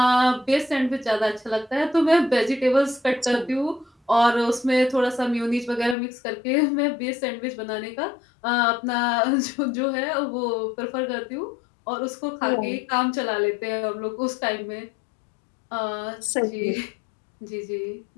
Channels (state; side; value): drops out; right; at 6.0 s